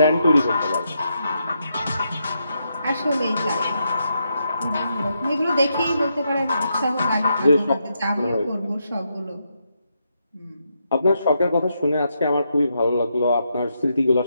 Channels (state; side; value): inverted; both; correlation -0.81